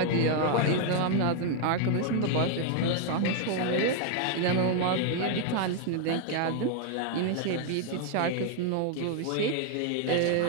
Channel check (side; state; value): both; different; correlation 0.00